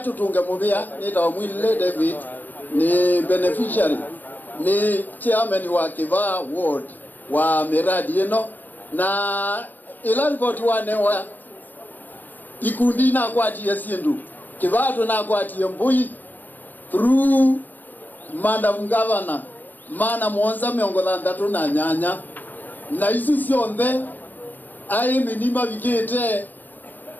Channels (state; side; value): late; right; 0.087 ms